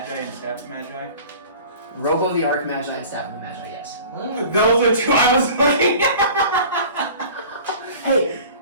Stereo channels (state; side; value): inverted; both; correlation -0.43